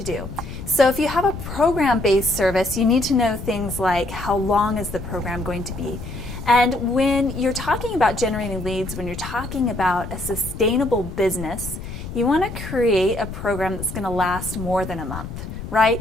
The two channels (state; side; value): noise; left; rumble, 9 dB below the sound